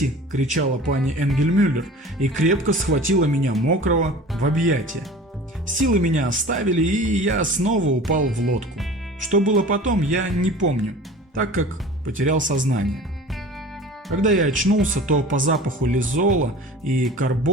– кричала пани Энгельмюллер и крепко схватила меня мокрого в объятия. Силы меня оставили, и я снова упал в лодку. Что было потом, я не помню, так как потерял сознание. Когда я очнулся, то по запаху лизола и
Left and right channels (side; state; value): both; normal; correlation 0.40